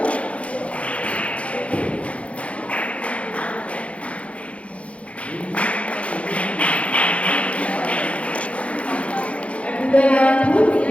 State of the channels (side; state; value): right; late; 0.063 ms